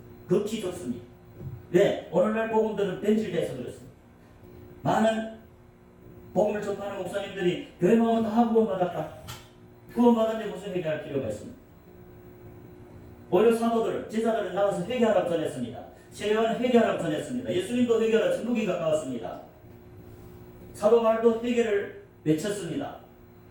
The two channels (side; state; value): both; identical; correlation 1.00